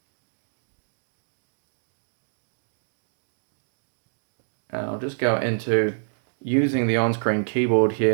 And I'll just go into using the on-screen keyboard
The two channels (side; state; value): left; silent; digital silence